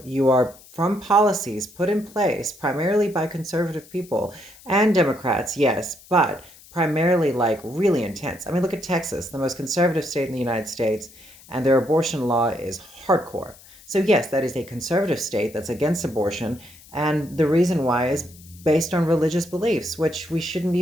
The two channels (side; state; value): left; noise; hiss, 23 dB below the sound